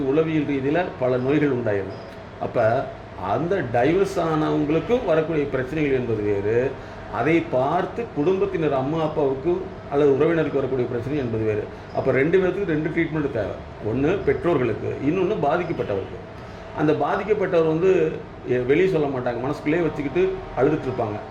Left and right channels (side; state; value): both; identical; correlation 1.00